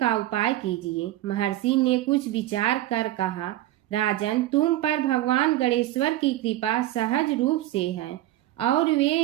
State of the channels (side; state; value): left; quieter; 15.0 dB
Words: उपाय कीजिए। महर्षि ने कुछ विचार कर कहा, राजन, तुम पर भगवान गणेश्वर की कृपा सहज रूप से है और वे